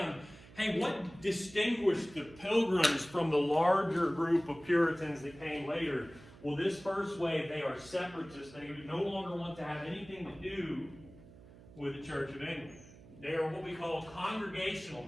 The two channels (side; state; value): right; noise; hum, 20 dB below the sound